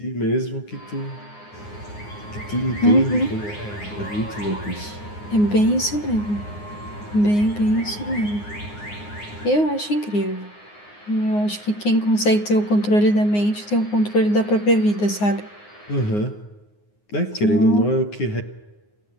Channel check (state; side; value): late; right; 9.6 ms